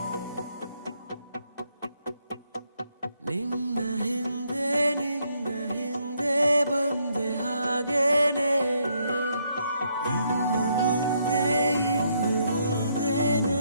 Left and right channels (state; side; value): inverted; both; correlation -0.73